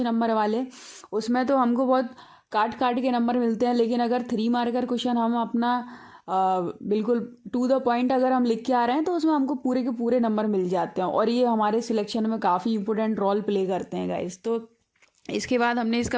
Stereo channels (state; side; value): identical; both; correlation 1.00